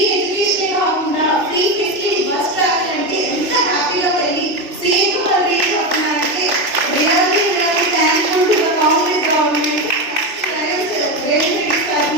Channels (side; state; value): left; late; 3.1 ms